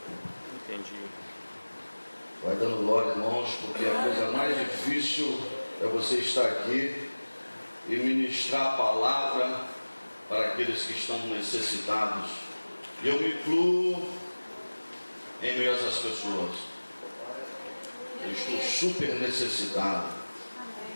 Entendi. Vai dando glória, irmãos, porque a coisa mais difícil é você estar aqui e ministrar a palavra para aqueles que estão necessitados. E eu me incluo em meio a essas pessoas. Eu estou super necessitado.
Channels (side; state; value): both; inverted; correlation -1.00